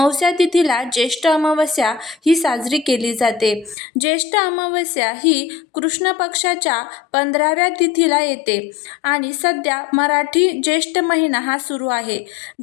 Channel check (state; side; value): drops out; right; at 3.8 s